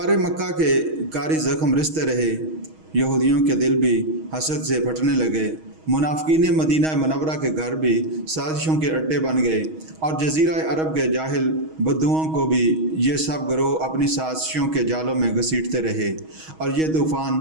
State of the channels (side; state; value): left; late; 6.3 ms